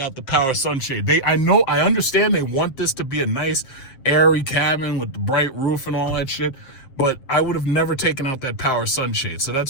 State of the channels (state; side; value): late; right; 7.6 ms